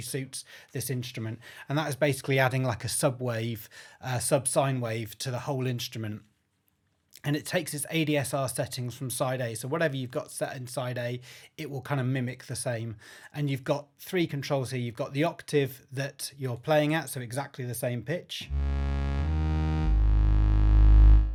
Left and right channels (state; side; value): identical; both; correlation 1.00